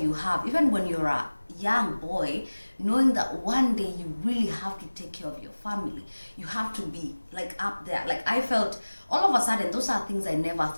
have, even when you're a young boy, knowing that one day you really have to take care of your family. You have to be like up there. Like, I felt all of a sudden, those are things I never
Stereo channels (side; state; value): both; inverted; correlation -1.00